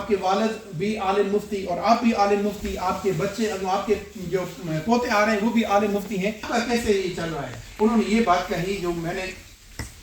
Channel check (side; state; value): both; identical; correlation 1.00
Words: کے والد بھی عالم مفتی اور آپ بھی عالم مفتی، آپ کے بچے، آپ کے جو پوتے آ رہے ہیں وہ بھی عالم مفتی ہیں، کیسے یہ چل رہا ہے؟ انہوں نے یہ بات کہی جو میں نے